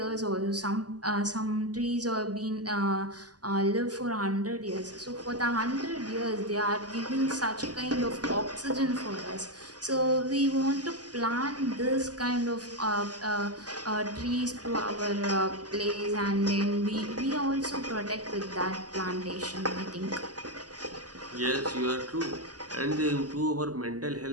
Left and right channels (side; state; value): left; late; 0.68 ms